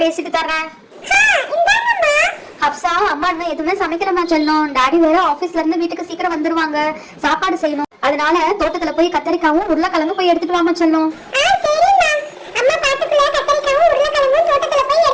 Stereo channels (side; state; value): both; identical; correlation 1.00